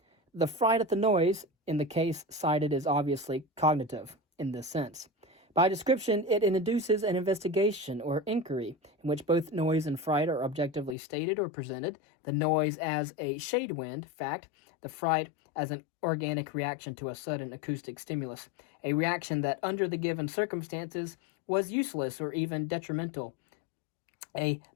The fright at the noise, in the case cited, is obviously cognitive in this sense. By description, it induces an investigation or inquiry in which both noise and fright are objectively stated or presented, the noise as a shade wind fact, the fright as an organic reaction to a sudden acoustic stimulus, a reaction that under the given circumstances was useless or even detrimental, a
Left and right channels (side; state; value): right; drops out; at 11.0 s